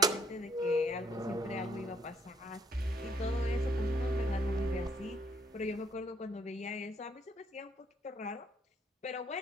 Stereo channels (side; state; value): both; normal; correlation 0.67